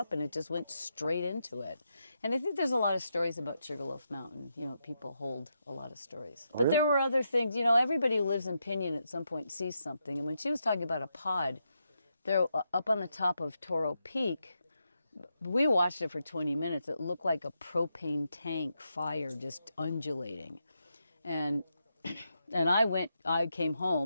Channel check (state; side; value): inverted; both; correlation -0.84